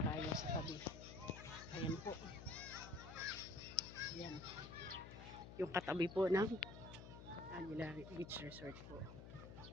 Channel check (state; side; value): noise; left; hum, 12 dB below the sound